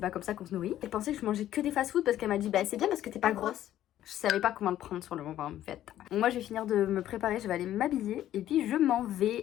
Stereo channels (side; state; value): right; quieter; 12.5 dB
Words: pas comme ça qu'on se nourrit. Elle pensait que je mangeais que des fast-food parce qu'elle m'a dit, bah c'est bien parce que t'es pas grosse. Je savais pas comment le prendre sur le moment en fait. Donc moi je vais finir de me préparer, je vais aller m'habiller et puis je m'en